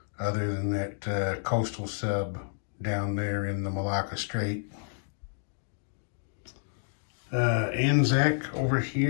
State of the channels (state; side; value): silent; right; digital silence